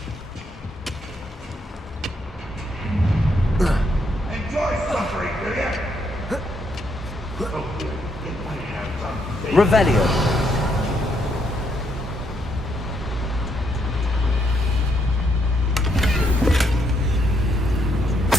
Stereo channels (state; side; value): normal; both; correlation 0.75